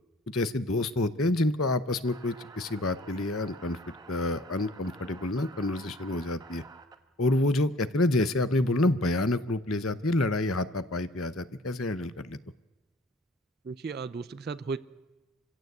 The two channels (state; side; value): normal; both; correlation 0.52